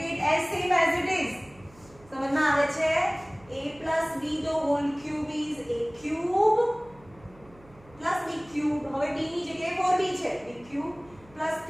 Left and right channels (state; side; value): noise; right; hum, 25 dB below the sound